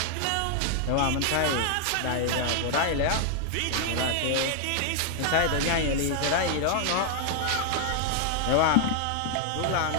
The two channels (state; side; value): different; both; correlation 0.00